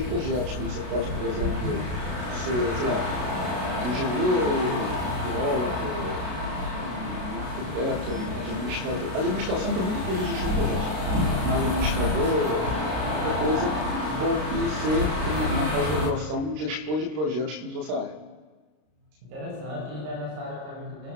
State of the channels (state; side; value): late; left; 33 ms